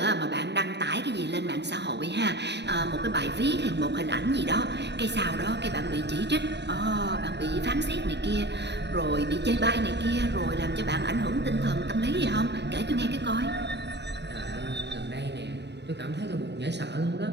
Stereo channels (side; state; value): left; late; 0.50 ms